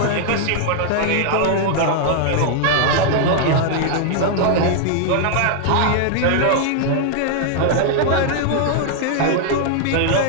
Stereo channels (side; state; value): both; different; correlation 0.00